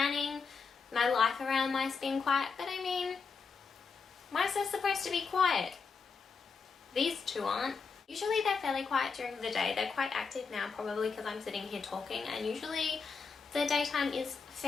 my life around mice being quiet, but I mean, mice are supposed to be quiet. These 2 aren't. Usually they're fairly quiet during the day. They're quite active now, probably because I'm sitting here talking, and usually the daytime is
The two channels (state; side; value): quieter; right; 5.2 dB